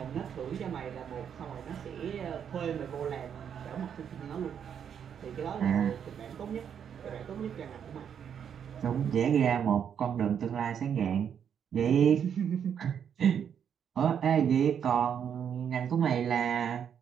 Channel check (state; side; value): quieter; left; 8.2 dB